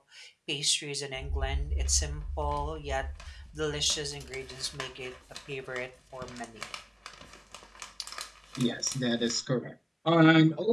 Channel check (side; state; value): both; identical; correlation 1.00